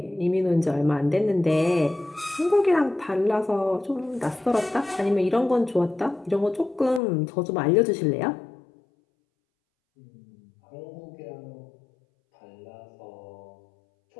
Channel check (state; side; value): drops out; right; at 7.0 s